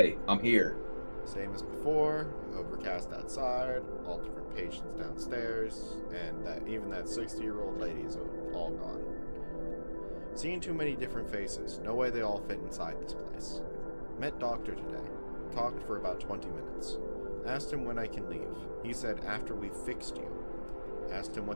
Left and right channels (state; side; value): inverted; both; correlation -1.00